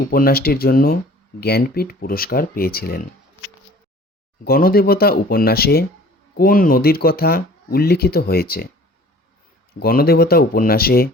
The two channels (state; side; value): normal; both; correlation 0.48